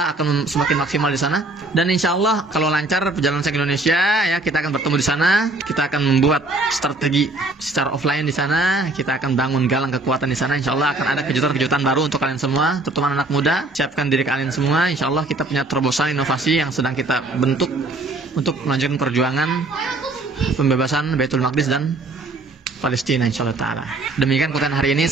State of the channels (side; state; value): left; quieter; 3.0 dB